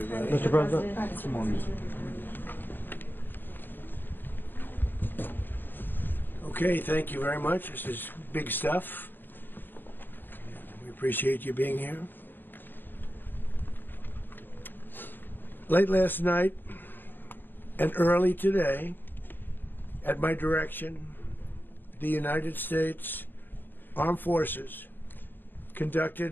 Mr. President. Come on. Okay, thank you very much. This is big stuff. We appreciate you being here. Late last night and early today, at my direction, the United States Armed Forces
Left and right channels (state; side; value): late; right; 0.094 ms